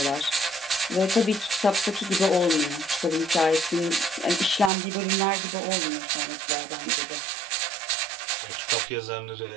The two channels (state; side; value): drops out; left; at 4.7 s